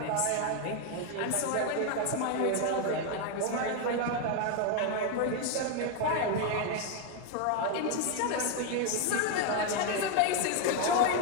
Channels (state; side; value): different; both; correlation 0.01